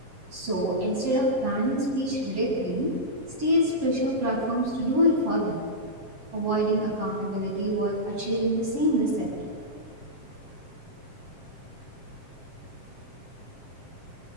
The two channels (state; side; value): late; left; 7.5 ms